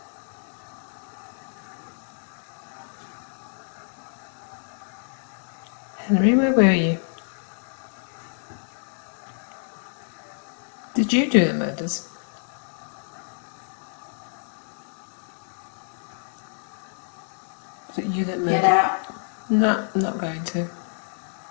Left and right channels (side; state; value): right; silent; digital silence